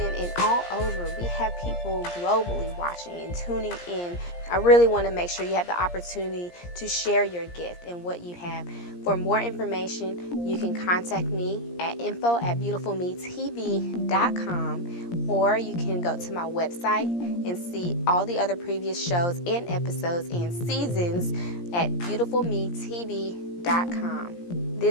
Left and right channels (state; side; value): late; right; 17 ms